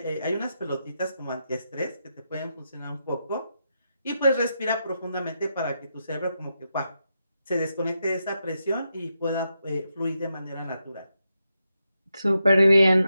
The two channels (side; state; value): both; inverted; correlation -0.85